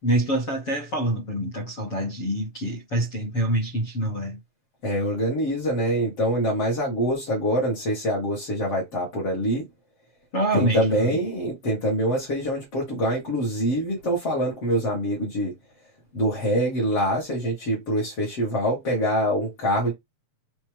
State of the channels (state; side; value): late; right; 7.2 ms